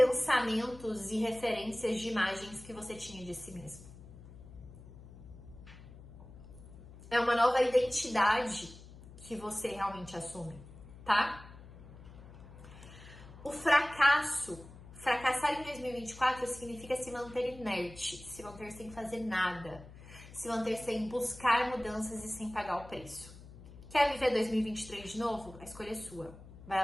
e referências de imagens que você tinha de si mesmo. É uma nova identidade que você realmente assume, tá? O fracassar em 2024 significa se manter inerte, se manter sem fazer nada, se manter sem buscar mudanças e sem pagar o preço. Quer viver 2023 de novo? A escolha é sua. Vai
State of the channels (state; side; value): noise; left; hum, 17 dB below the sound